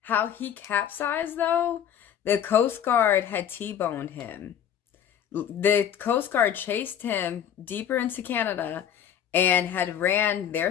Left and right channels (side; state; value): right; quieter; 9.3 dB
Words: he capsized, though? The Coast Guard had T-boned him. The Coast Guard chased him deeper into Canada and had ran